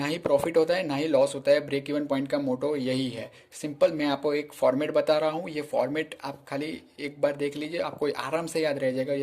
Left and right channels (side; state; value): both; identical; correlation 1.00